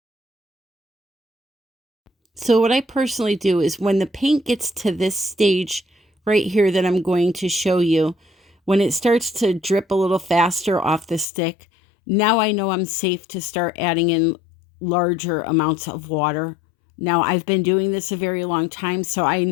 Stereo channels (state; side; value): drops out; right; at 11.2 s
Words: So what I personally do is when the paint gets to this stage right here that I'm going to show you, when it starts to drip a little faster off the stick, now I know I'm safe to start adding in larger amounts of water. Now I've been doing this a very long time, so I